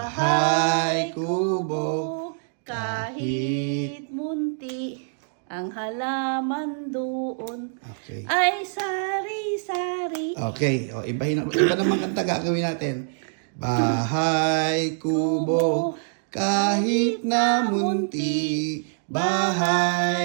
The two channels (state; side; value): silent; left; digital silence